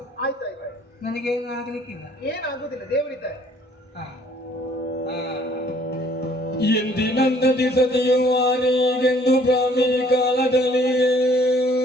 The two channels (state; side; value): normal; both; correlation 0.59